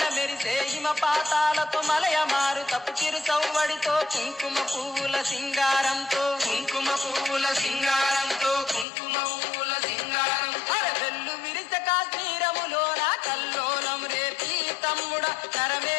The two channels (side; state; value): right; drops out; at 8.8 s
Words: మెరిసే హిమపాతాలతో మలయ మారు తప్పు చిరు చౌవడితో కుంకుమ పువ్వుల సింగారంతో కుంకుమ పువ్వుల సింగారంతో కుంకుమ పువ్వుల సింగారంతో అరవెల్లు విరిస కాశ్మీరములోన కల్లోలం రేపి తమ్ముడ